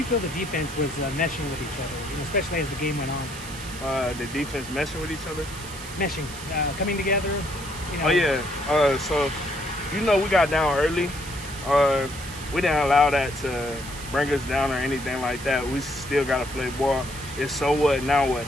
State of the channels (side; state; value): right; noise; hiss, 13 dB below the sound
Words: feel the defense was meshing with each other, especially as the game went on? The defense meshing with each other? Meshing, coming together. Oh yeah. So we got down early. We didn't allow that to bring us down or anything like that. We still got to play ball. It's so what, now what?